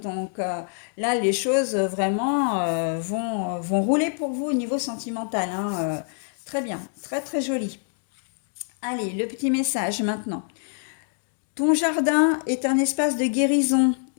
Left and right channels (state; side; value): silent; right; 59 dB below the other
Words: là, les choses vraiment vont rouler pour vous au niveau sentimental, hein. Très bien, très très joli. Allez, le petit message maintenant. Ton jardin est un espace de guérison.